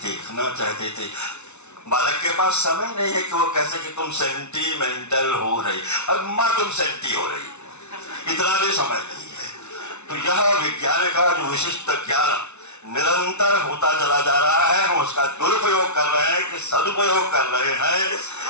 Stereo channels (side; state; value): right; late; 0.82 ms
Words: चाहते थे। बालक के पास समय नहीं है कि वो कैसे कि तुम सेंटीमेंटल हो रही, अब माँ तुम सेंटी हो रही, इतना भी समय नहीं है। तो यह विज्ञान का जो विशिष्ट ज्ञान निरंतर होता चला जा रहा है, हम उसका दुरुपयोग कर रहे हैं कि सदुपयोग कर रहे